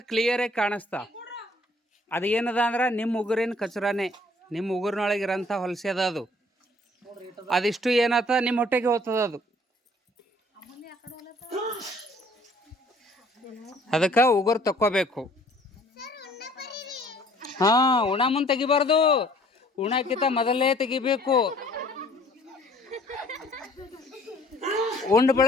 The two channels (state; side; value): normal; both; correlation 0.57